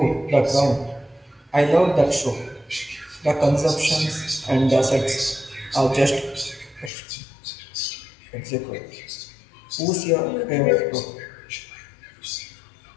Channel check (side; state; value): right; drops out; at 6.9 s